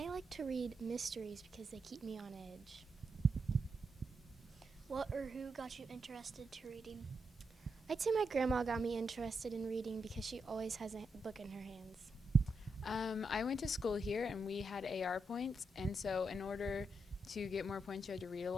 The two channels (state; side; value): normal; both; correlation 0.84